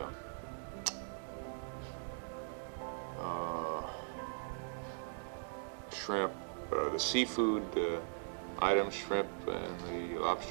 shrimp, the seafood items, shrimp and the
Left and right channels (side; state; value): left; silent; digital silence